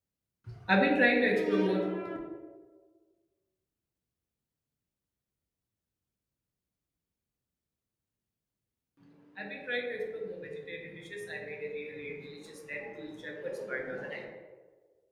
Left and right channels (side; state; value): both; identical; correlation 1.00